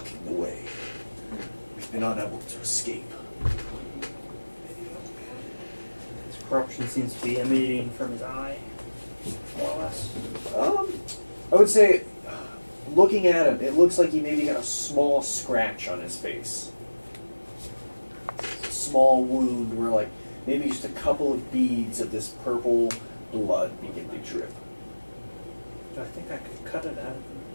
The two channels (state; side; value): inverted; both; correlation -1.00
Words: the way. We've been unable to escape. This corruption seems to be emanating from his eye, more or less. I would say, looking at him, it looks like he maybe got a small scratch on his face. Small wound where, like, maybe just a couple of beads of this purple blood begin to drip. Do I think I could cut it out of